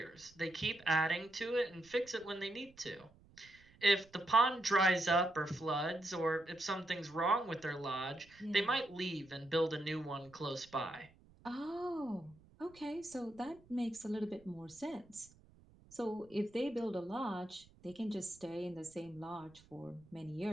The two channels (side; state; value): right; noise; rumble, 26 dB below the sound